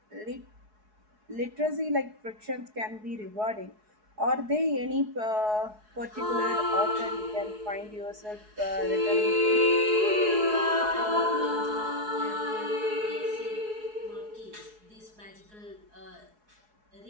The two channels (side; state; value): left; late; 4.7 ms